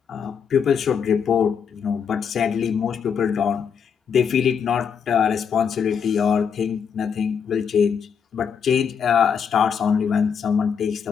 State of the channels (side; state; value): right; quieter; 7.0 dB